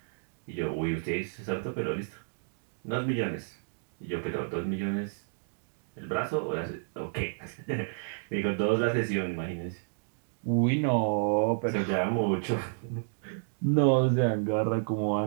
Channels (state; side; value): silent; left; digital silence